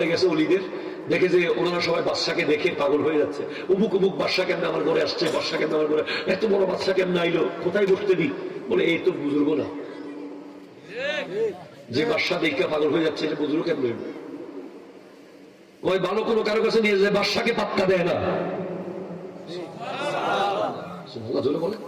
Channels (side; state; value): both; identical; correlation 1.00